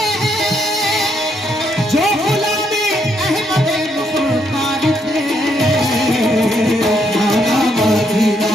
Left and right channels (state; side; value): normal; both; correlation 0.75